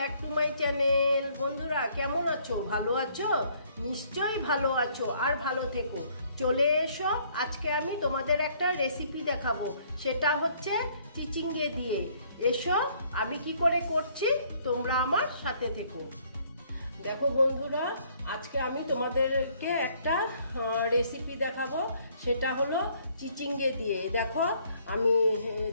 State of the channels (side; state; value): both; inverted; correlation -0.63